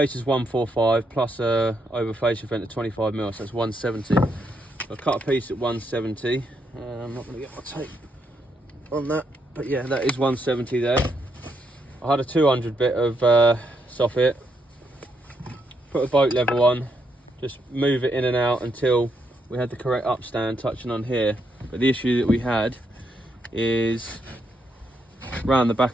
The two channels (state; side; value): normal; both; correlation 0.78